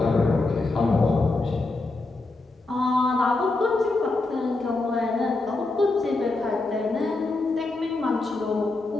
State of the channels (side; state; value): right; quieter; 3.3 dB